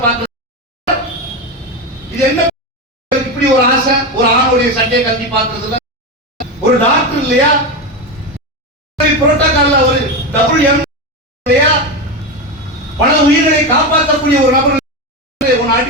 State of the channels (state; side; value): normal; both; correlation 0.16